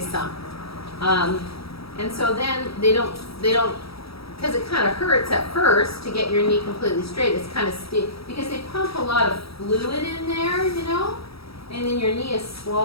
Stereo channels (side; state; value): right; late; 0.76 ms